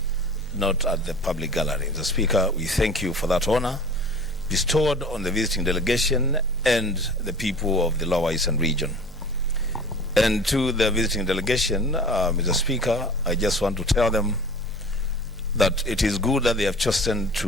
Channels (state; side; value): normal; both; correlation 0.41